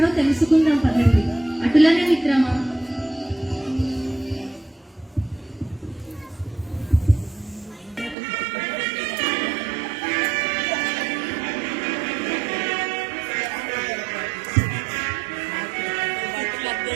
తెలుసుకుందాం పదండి. అటులనే మిత్రమా.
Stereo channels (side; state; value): left; drops out; at 8.2 s